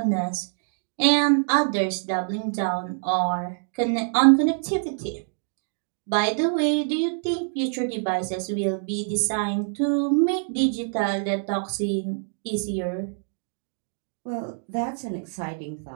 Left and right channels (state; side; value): silent; left; 61 dB below the other